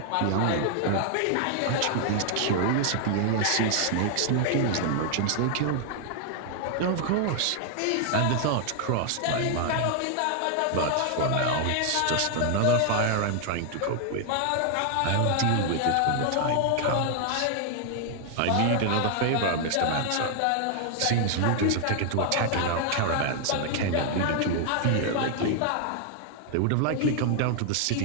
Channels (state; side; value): different; both; correlation 0.00